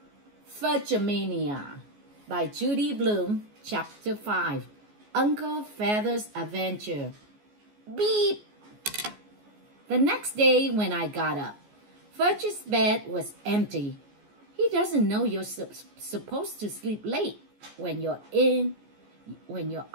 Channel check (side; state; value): left; late; 14 ms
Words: Fudge-a-Mania by Judy Blume, Chapter 5, Uncle Feather's Adventure. Beep! The next day when I got up, Fudge's bed was empty. He doesn't know you're supposed to sleep late when you're